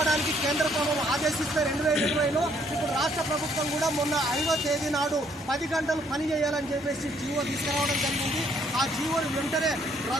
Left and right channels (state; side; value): normal; both; correlation 0.66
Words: కేంద్ర ప్రభుత్వం ఆదేశిస్తే 2020లో ఇప్పుడు రాష్ట్ర ప్రభుత్వం కూడా మొన్న 5వ తేదీ నాడు 10 గంటలు పని చేయాలని చెప్పేసి జీవో తీసుకురావడం జరిగింది. ఆ జీవోను వెంటనే